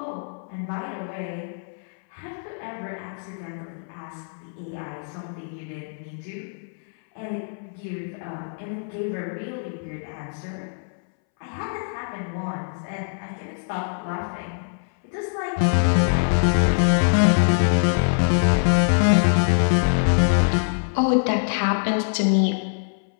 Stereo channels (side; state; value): right; silent; 63 dB below the other